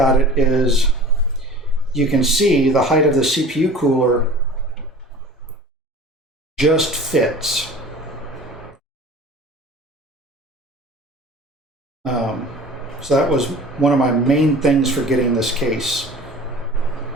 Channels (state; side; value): normal; both; correlation 0.42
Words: it is you can see the height of the CPU cooler just fits. So that was one of my main things for getting this case,